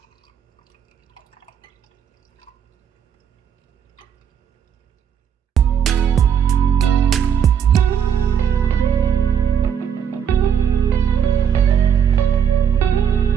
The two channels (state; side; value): quieter; left; 8.3 dB